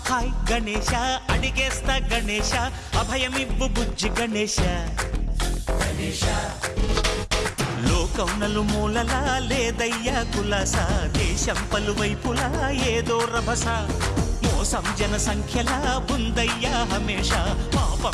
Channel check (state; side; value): identical; both; correlation 1.00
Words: hi Ganesha అడిగేస్తా Ganesha అభయమివ్వు బుజ్జి గణేశ లోకం నలుమూలలా లేదయ్యా కులాస దేశం పలువైపులా ఏదో రభస మోసం జన సంఖ్యలా ఉందయ్యా హమేష